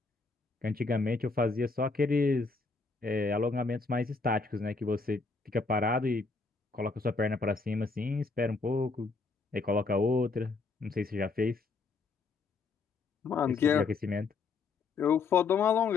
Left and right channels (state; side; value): quieter; right; 4.2 dB